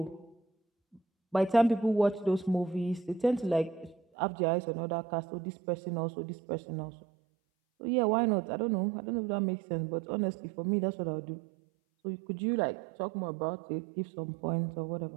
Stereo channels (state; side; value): drops out; left; at 4.0 s